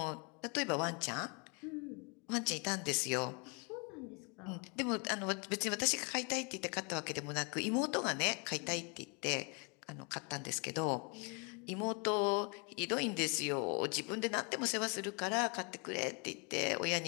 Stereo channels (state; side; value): quieter; right; 33.6 dB